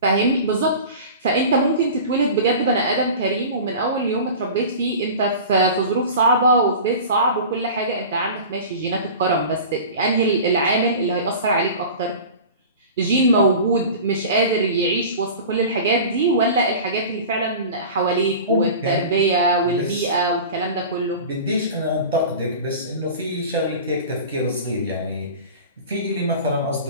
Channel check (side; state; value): both; inverted; correlation -0.36